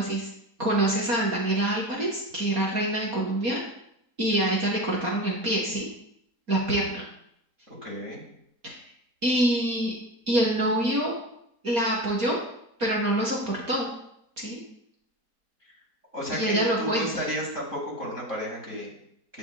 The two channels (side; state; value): left; late; 4.3 ms